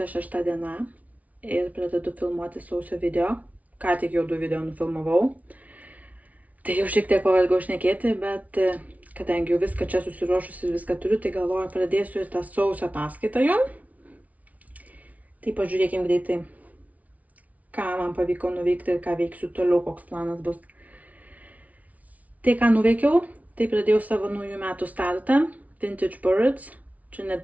6 diena ir pradedu filmuoti sausio video. Ką tik jau 2 video nufilmavau. Tai jau šiek tiek pavargau šnekėti, bet kadangi jau viską čia susiruošus ir viską turiu, tai galvoju pradėsiu ir tą sausio ataskaitą jum. Tai pažiūrėkim greitai, ką man pavyko nuveikti ir ką veiksiu toliau, koks planas bus. Tai, ką nuveikiau, tai pradėjau savo naujų metų startą, Vintage Birds, čia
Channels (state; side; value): late; left; 0.070 ms